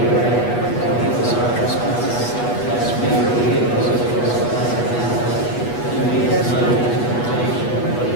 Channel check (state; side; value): late; right; 8.2 ms